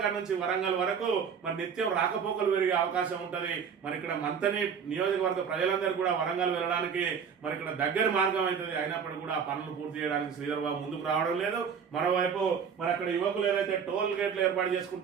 నుంచి వరంగల్ వరకు మరి నిత్యం రాకపోకలు పెరిగే అవకాశం ఉంటది. మరి ఇక్కడ మంతని నియోజకవర్గ ప్రజలందరూ కూడా వరంగల్ వెళ్ళడానికి మరి ఇక్కడ దగ్గర మార్గం అవుతుంది. అయినప్పటికీ కూడా ఆ పనులు పూర్తి చేయడానికి శ్రీధర్ బాబు ముందుకు రావడం లేదు. మరోవైపు మరి అక్కడ యువకులు ఏదైతే టోల్ గేట్లు ఏర్పాటు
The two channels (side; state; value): left; quieter; 6.8 dB